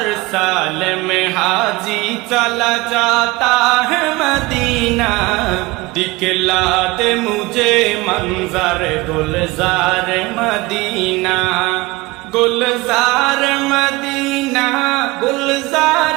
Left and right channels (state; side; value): quieter; left; 21.9 dB